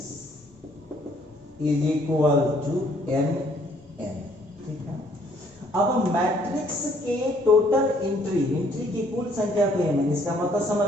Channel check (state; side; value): normal; both; correlation 0.63